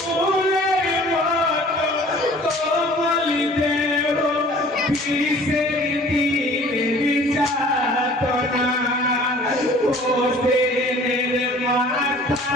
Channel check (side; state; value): both; normal; correlation 0.50